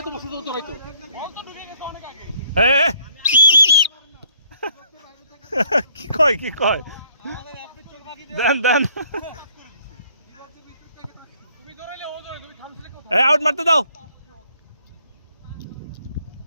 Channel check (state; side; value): inverted; both; correlation -0.63